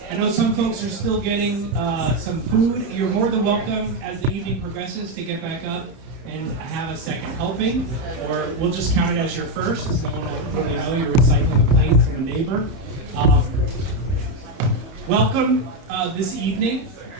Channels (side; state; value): left; late; 30 ms